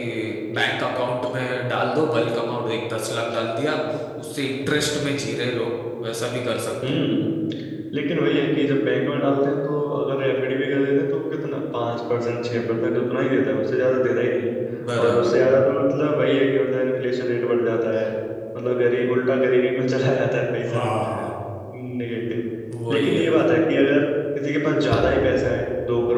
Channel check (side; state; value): both; identical; correlation 1.00